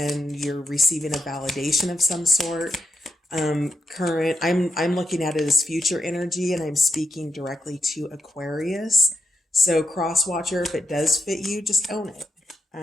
you're receiving a validation of some sort. Current, I'm looking at it as future energy, and I'm speaking directly to Aquarius. So cross watcher, if it does fit you, just own it.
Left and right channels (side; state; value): both; normal; correlation 0.83